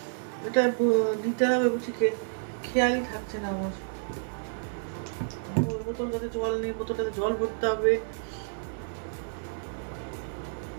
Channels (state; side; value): silent; left; digital silence